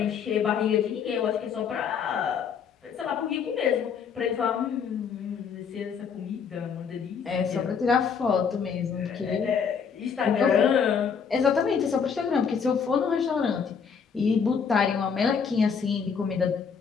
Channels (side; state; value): right; quieter; 6.6 dB